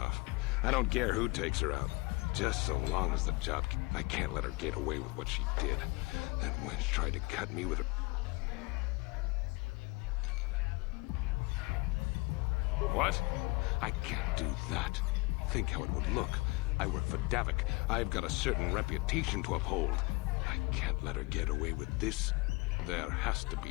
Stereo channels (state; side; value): quieter; right; 25.4 dB